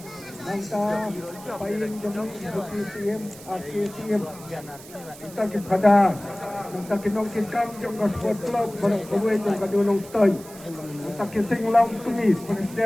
mangka paling yung KTM KTM kita kipada mangka kinong kikam yung sport club barang kawin yung kadulong toy mangka kising lang tumis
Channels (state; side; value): noise; right; hiss, 18 dB below the sound